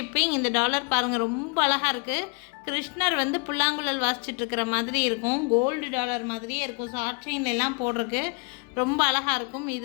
இந்த டாலர் பாருங்கள், ரொம்ப அழகாக இருக்குது. கிருஷ்ணர் வந்து புல்லாங்குழல் வாசிச்சுட்ருக்கிற மாதிரி இருக்கும். கோல்டு டாலர் மாதிரியே இருக்கும். ஷார்ட் செயின் எல்லாம் போடுறதுக்கு ரொம்ப அழகாக இருக்கும்.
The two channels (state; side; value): quieter; right; 32.0 dB